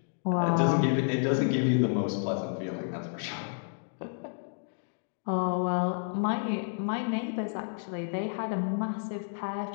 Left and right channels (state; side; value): silent; right; digital silence